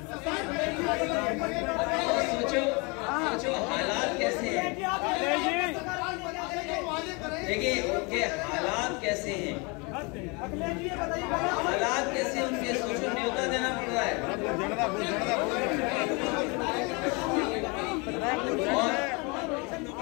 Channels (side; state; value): right; quieter; 29.6 dB